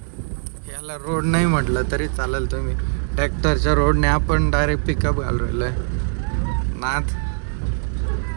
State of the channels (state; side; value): silent; left; digital silence